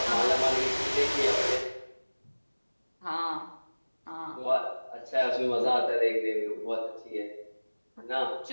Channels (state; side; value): inverted; both; correlation -1.00